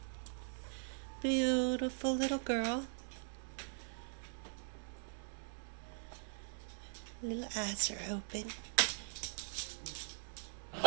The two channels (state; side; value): silent; left; digital silence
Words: Beautiful little girl. Little eyes are open.